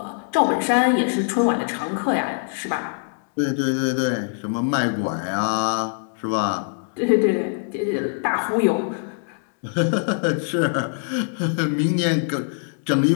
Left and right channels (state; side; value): silent; right; digital silence